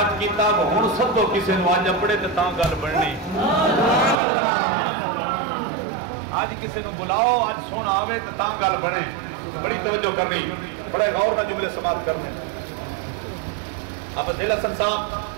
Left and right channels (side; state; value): left; drops out; at 4.2 s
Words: ਕੀਤਾ ਹੁਣ ਸੱਦੋ ਕਿਸੇ ਨੂੰ ਅੱਜ ਆਪਣੇ ਤੇ ਤਾਂ ਗੱਲ ਬਣਨੀ ਅੱਜ ਕਿਸੇ ਨੂੰ ਬੁਲਾਓ ਅੱਜ ਸੋਹਣਾ ਆਵੇ ਤੇ ਤਾਂ ਗੱਲ ਬਣੇ ਬੜੀ ਤਵੱਜੋ ਕਰਨੀ ਬੜੇ ਗੌਰ ਨਾਲ ਜੁਮਲੇ ਸਮਾਪਤ ਕਰਨੇ ਅਬ ਜ਼ਿਲ੍ਹਾ ਸੰਸਾਬ